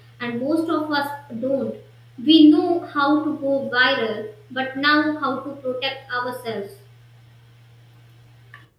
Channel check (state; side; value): identical; both; correlation 1.00